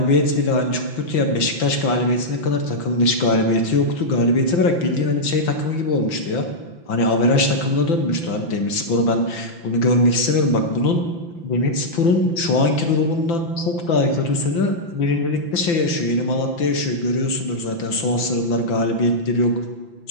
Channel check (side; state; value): right; late; 5.9 ms